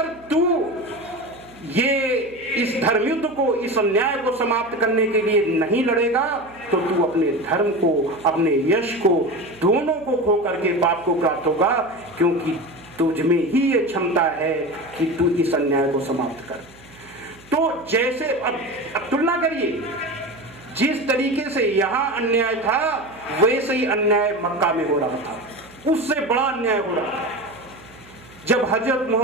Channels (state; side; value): noise; right; hum, 25 dB below the sound